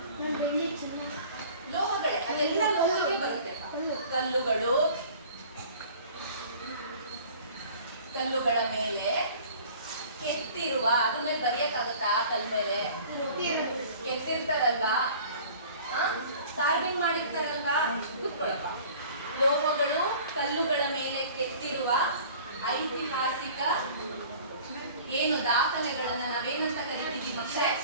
ಕಲ್ಲುಗಳು, ಕಲ್ಲುಗಳ ಮೇಲೆ ಕೆತ್ತಿರುವ, ಅದ್ರ ಮೇಲೆ ಬರೆಯಕ್ಕಾಗತ್ತಾ? ಕಲ್ ಮೇಲೆ ಕೆತ್ತಿರ್ತಾರಲ್ವಾ, ಕಾರ್ವಿಂಗ್ ಮಾಡಿರ್ತಾರಲ್ವಾ, ಕೂತ್ಕೊಳಪ್ಪ. ಲೋಹಗಳು ಕಲ್ಲುಗಳ ಮೇಲೆ ಕೆತ್ತಿರುವ ಐತಿಹಾಸಿಕ ಏನು ದಾಖಲೆಗಳನ್ನ ನಾವೇನಂತ ಕರಿತೀವಿ ಮಕ್ಕಳೇ?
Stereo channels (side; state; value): both; inverted; correlation -0.46